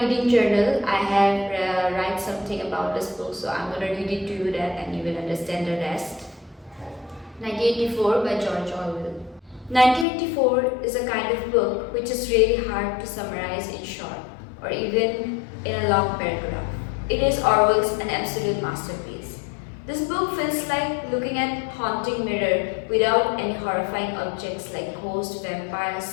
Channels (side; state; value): right; drops out; at 10.1 s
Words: journal, I have write something about this book, so I'm gonna read it to you that and you will understand the rest. 1984 by George Orwell. 1984 is a kind of book which is really hard to summarize in short or even in a long paragraph. It is Orwell's an absolute masterpiece. This book feels like looking at haunting mirror without any horrifying objects like ghosts, vampires,